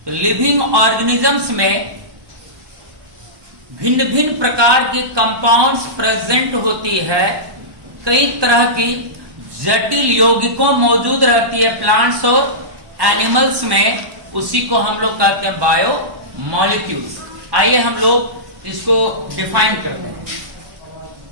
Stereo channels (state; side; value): late; left; 1.1 ms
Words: तो लिविंग ऑर्गेनिजम्स में भिन्न भिन्न प्रकार के कंपाउंड्स प्रेजेंट होती है, कई तरह की जटिल यौगिकों मौजूद रहती है प्लांट्स और एनिमल्स में, उसी को हम लोग कहते हैं बायोमॉलिक्यूल्स। आइए हम लोग इसको डिफाइन करते हैं।